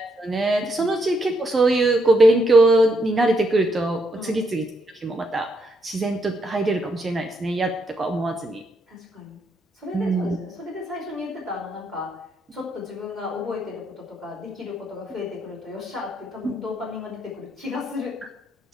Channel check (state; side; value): normal; both; correlation 0.77